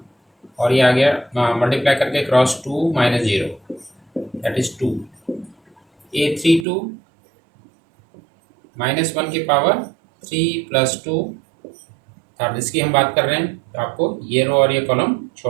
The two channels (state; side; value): drops out; left; at 6.7 s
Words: और ये आ गया मल्टीप्लाई करके क्रॉस 2 -0 दैट इज 2. A32 -1 की पावर 3 + 2. अब इसकी हम बात कर रहे हैं. तो आपको ये रो और ये कॉलम